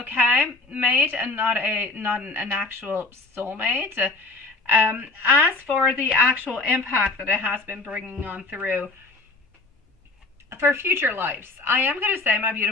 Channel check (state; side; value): quieter; right; 3.3 dB